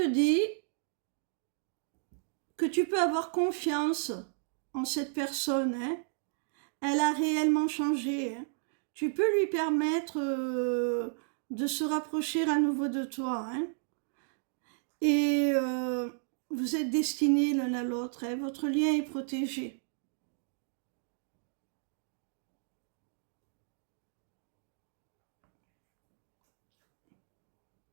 dit que tu peux avoir confiance en cette personne. Hein. Elle a réellement changé. Hein. Tu peux lui permettre de se rapprocher à nouveau de toi. Hein. Et vous êtes destinés l'un à l'autre. Hein. Votre lien est protégé.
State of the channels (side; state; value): left; silent; digital silence